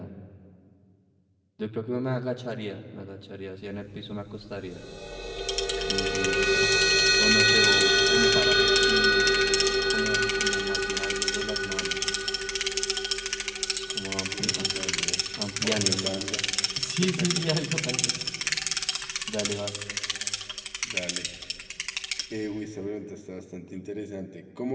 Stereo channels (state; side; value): identical; both; correlation 1.00